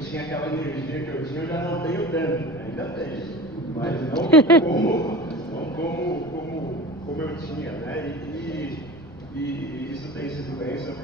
aquela energia que eu tinha, eu já não tenho tanto, né? Ainda tenho, mas não como eu tinha, né? E isso tem sido bênção,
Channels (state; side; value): noise; left; rumble, 21 dB below the sound